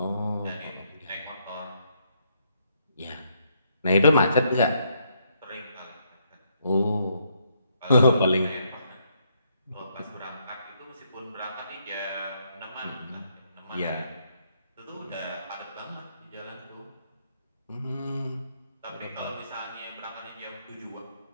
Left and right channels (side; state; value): both; inverted; correlation -0.74